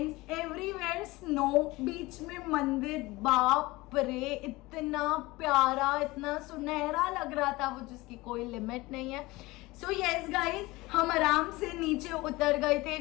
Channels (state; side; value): quieter; right; 21.1 dB